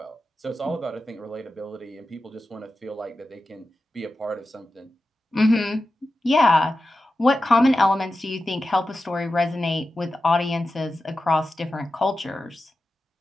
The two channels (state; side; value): normal; both; correlation 0.92